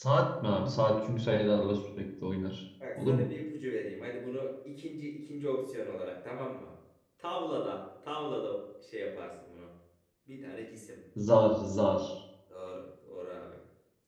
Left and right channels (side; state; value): both; identical; correlation 1.00